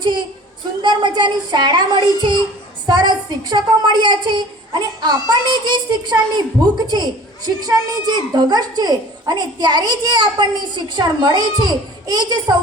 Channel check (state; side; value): normal; both; correlation 0.45